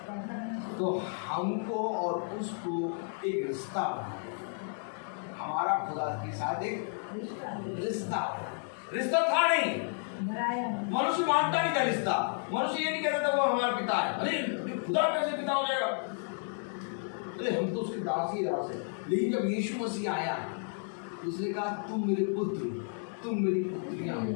तो हमको और उसको एक रिश्ता बनाया। हमारा खुदा के साथ एक रिश्ता था नहीं। मनुष्य मानता नहीं था रिश्ता। मनुष्य ये नहीं कहता था वो हमारा पिता है। अरे खुदा कैसे पिता हो जाएगा? अरे हम तो उसके दास ही दास है। लेकिन जब यीशु मसीह आया, उसने कहा तुम मेरे पुत्र, तुम मेरी पुत्रियां हो।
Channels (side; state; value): right; silent; 56 dB below the other